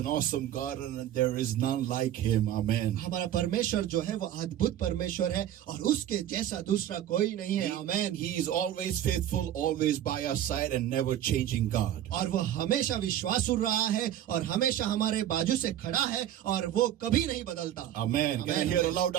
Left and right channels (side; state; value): left; quieter; 11.5 dB